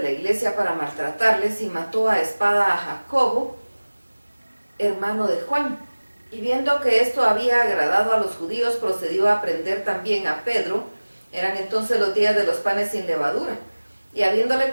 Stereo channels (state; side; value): inverted; both; correlation -1.00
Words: la iglesia para maltratarles y mató a espada a Jacobo, hermano de Juan. Y viendo que esto había agradado a los judíos, procedió a prender también a Pedro. Eran entonces los días de los panes sin levadura. Y habiéndole